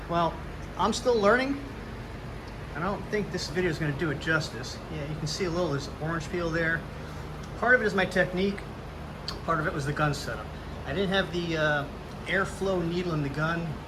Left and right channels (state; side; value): identical; both; correlation 1.00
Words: well, I'm still learning. I don't think this video is gonna do it justice. Yeah, you can see a little, there's orange peel there. Part of it is my technique. Part of it was the gun setup. I didn't have the airflow needle in the gun